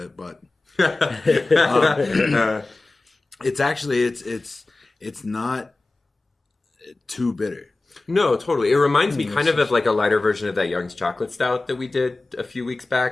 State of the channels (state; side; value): quieter; right; 3.2 dB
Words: but it's actually it's not too bitter. No, totally. It reminds me kind of like a lighter version of that Young's Chocolate Stout that we did a few weeks